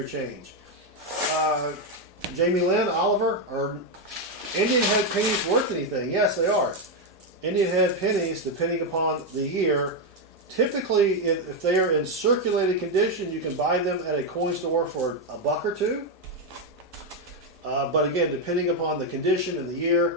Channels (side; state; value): both; normal; correlation 0.04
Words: change. Jamie Lynn, Oliver, are Indian head pennies worth anything? Yes, they are. Indian head pennies, depending upon the year, typically if they are in circulated condition, you can buy them at a coin store for $1 or $2. But again, depending upon the condition and the